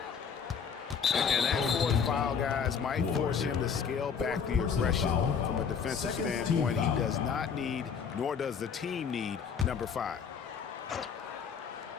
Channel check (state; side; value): quieter; right; 6.6 dB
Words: And that fourth foul, guys, might force him to scale back the aggression from a defensive standpoint. He does not need, nor does the team need, number 5.